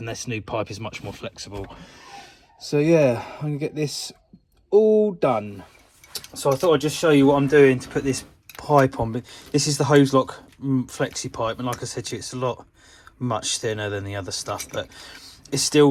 this new pipe is much more flexible. So yeah, I'm gonna get this all done. So I thought I'd just show you what I'm doing to put this pipe on. But this is the Hozelock flexi pipe, and like I said to you, it's a lot much thinner than the other stuff, but it's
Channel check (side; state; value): both; identical; correlation 1.00